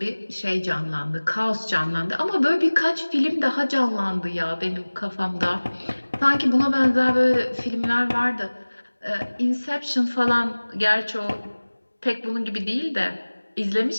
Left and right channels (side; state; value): both; inverted; correlation -1.00